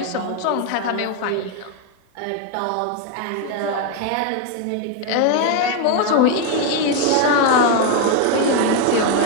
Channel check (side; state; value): both; different; correlation 0.01